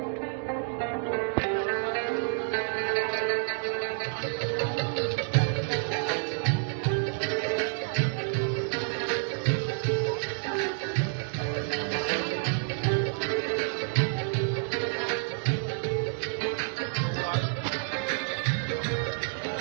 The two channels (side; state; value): left; silent; 58 dB below the other